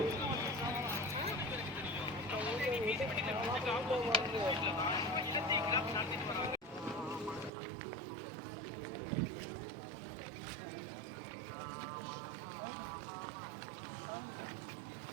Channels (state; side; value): drops out; left; at 7.5 s